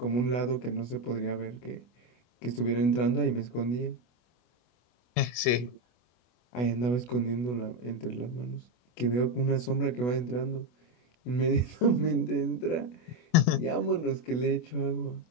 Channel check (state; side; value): late; right; 24 ms